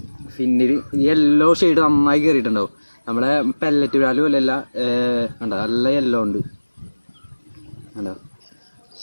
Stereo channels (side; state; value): both; inverted; correlation -1.00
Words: ഫിന്നിൽ യെല്ലോ ഷെയ്ഡ് നന്നായി കയറിയിട്ടുണ്ടാവും. നമ്മളെ പെല്ലറ്റ് ബ്രാലും അല്ലല്ല, കണ്ടോ നല്ല യെല്ലോ ഉണ്ട്, കണ്ടോ